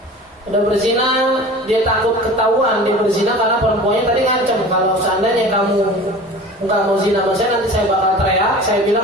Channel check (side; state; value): both; normal; correlation 0.39